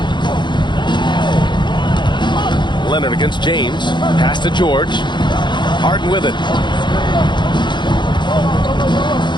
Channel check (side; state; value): right; late; 0.22 ms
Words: Leonard against James. Pass to George. Harden with it.